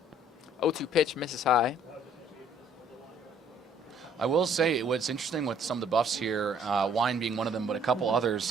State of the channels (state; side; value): normal; both; correlation 0.60